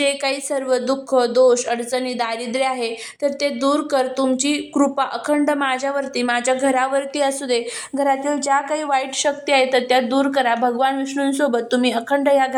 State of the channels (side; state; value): both; identical; correlation 1.00